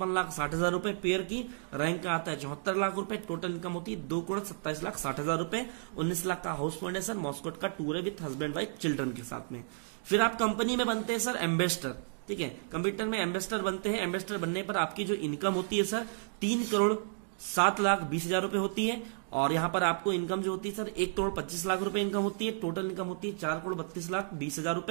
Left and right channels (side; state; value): left; silent; digital silence